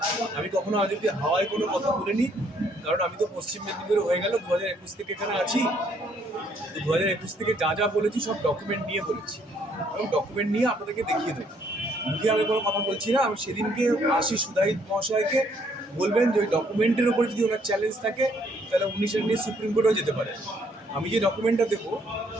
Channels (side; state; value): both; normal; correlation 0.67